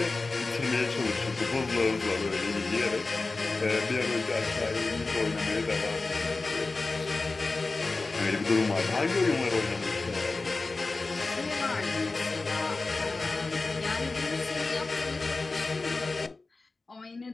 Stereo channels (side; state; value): right; quieter; 3.6 dB